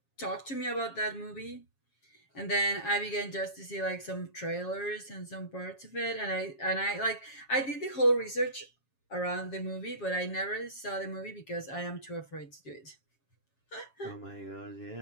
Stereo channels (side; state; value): right; late; 7.3 ms